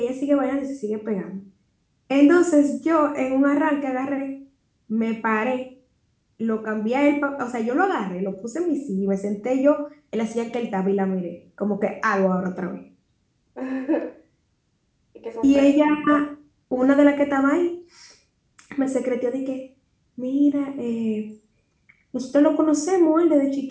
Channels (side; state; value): both; identical; correlation 1.00